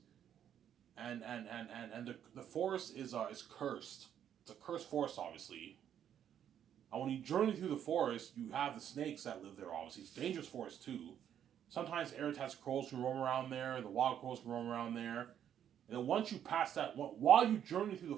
and the forest is cursed. It's a cursed forest, obviously. And when you journey through the forest, you have the snakes that live there, obviously. It's a dangerous forest, too. Sometimes Eritaz crows can roam around there, the wild crows can roam around there. And then once you pass that, while you journey through the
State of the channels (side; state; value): left; quieter; 9.6 dB